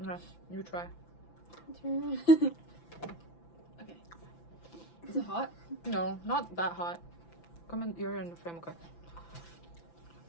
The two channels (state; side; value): late; right; 5.9 ms